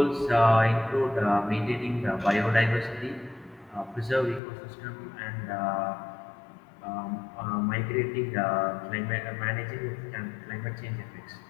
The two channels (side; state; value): right; drops out; at 4.4 s